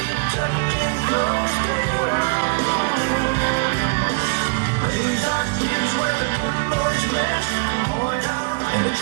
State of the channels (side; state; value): left; quieter; 35.7 dB